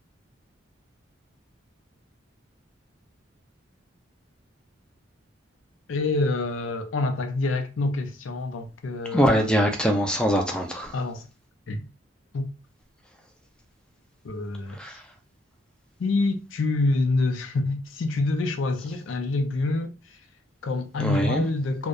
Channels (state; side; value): normal; both; correlation 0.68